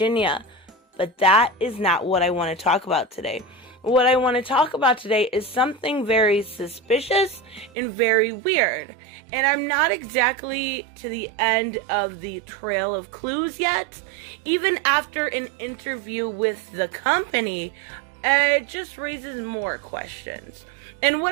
But that is not what I want to talk about today. What I want to talk about today is something very suspicious and very weird. And I'm not exactly to the end of the trail of clues yet. Even after an interview with the company, it just raises more questions. And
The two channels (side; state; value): left; drops out; at 7.7 s